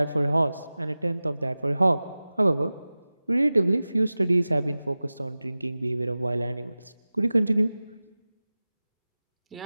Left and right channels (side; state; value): both; inverted; correlation -0.97